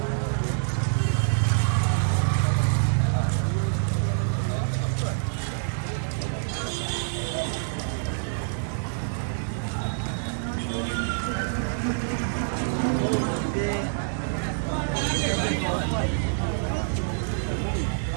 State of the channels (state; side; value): silent; left; digital silence